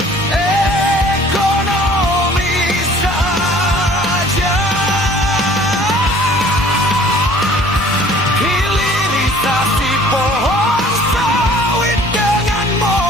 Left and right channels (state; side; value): normal; both; correlation 0.51